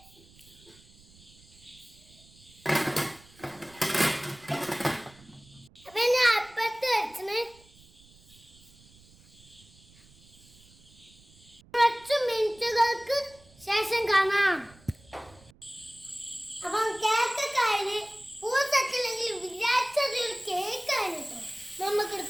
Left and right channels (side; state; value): right; noise; rumble, 26 dB below the sound